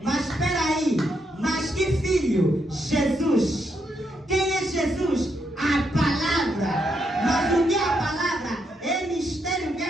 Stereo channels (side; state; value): both; normal; correlation 0.79